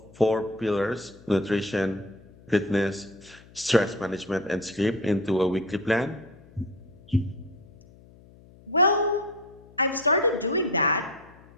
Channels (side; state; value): left; noise; hum, 24 dB below the sound